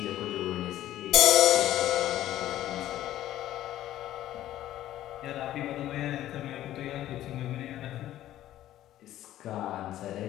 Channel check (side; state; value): right; quieter; 13.3 dB